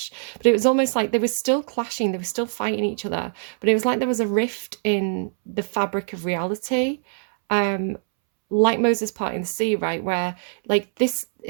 But it was almost like they were still clashing, they were still fighting each other, but it was like there was a rift in the fabric of reality, um like Moses parting the sea, right? Where like this,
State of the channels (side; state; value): left; silent; 63 dB below the other